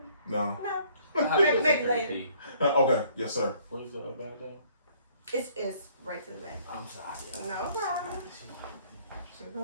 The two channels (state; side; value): inverted; both; correlation -0.61